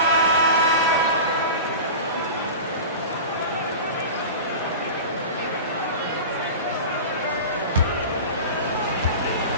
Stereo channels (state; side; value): inverted; both; correlation -0.31